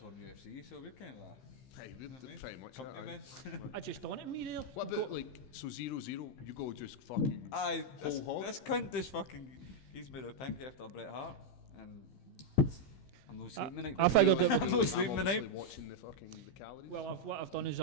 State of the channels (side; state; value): right; late; 15 ms